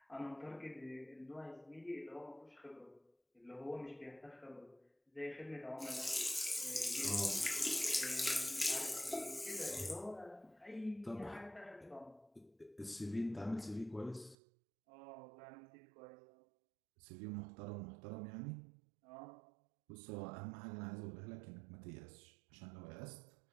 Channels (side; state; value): left; drops out; at 14.4 s